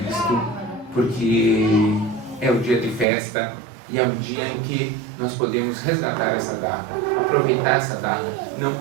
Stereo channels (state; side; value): drops out; left; at 3.1 s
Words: porque é o dia de festa e é um dia em que nós podemos resgatar essa data, aproveitar essa data, não